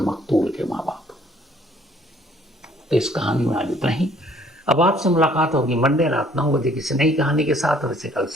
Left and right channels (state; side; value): normal; both; correlation 0.60